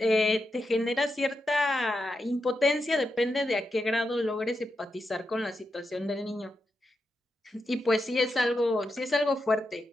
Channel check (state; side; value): normal; both; correlation 0.86